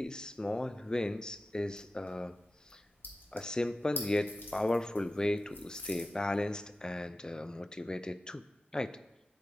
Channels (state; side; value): normal; both; correlation 0.94